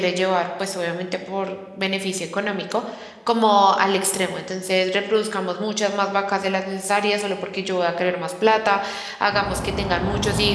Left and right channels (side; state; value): both; identical; correlation 1.00